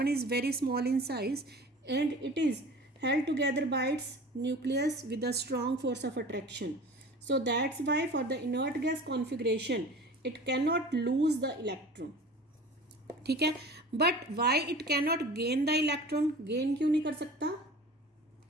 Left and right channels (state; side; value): normal; both; correlation 0.40